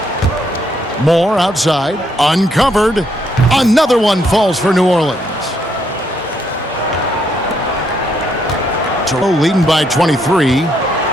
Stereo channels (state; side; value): normal; both; correlation 0.74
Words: Moore outside, uncovered. Another one falls for New Orleans. Toronto leading by 23.